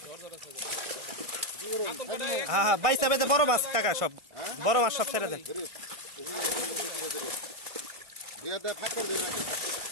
হ্যাঁ হ্যাঁ বাইসা বেঁধে বড় মাছ কাকা সব বড় মাছ সব ছেড়ে দেন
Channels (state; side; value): late; left; 1.5 ms